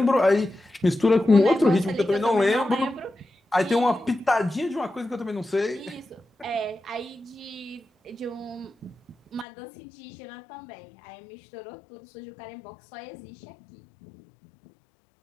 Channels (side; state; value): right; drops out; at 9.5 s